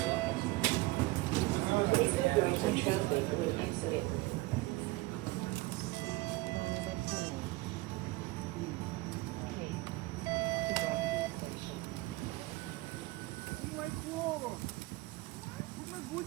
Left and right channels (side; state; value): left; quieter; 21.2 dB